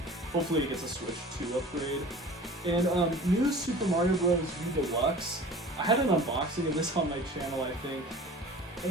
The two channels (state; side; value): normal; both; correlation 0.41